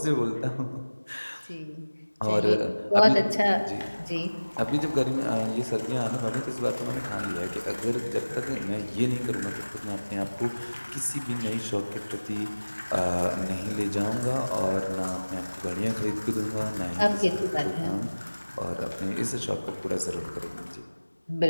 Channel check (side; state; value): both; inverted; correlation -1.00